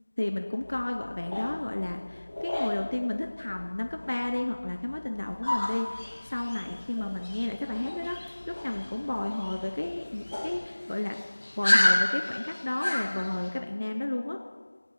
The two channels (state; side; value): inverted; both; correlation -1.00